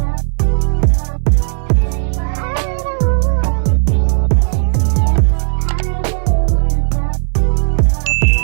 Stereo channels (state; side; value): silent; left; digital silence